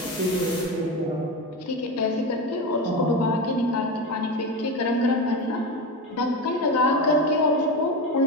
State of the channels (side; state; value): both; normal; correlation 0.21